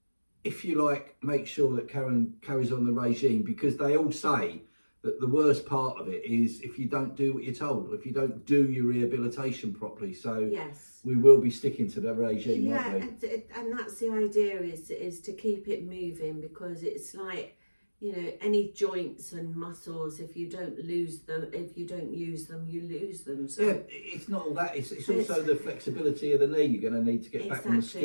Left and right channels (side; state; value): both; inverted; correlation -1.00